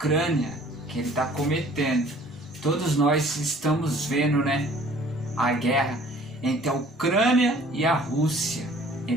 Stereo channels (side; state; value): both; normal; correlation 0.53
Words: que ele está cometendo. Todos nós estamos vendo, né, a guerra entre a Ucrânia e a Rússia,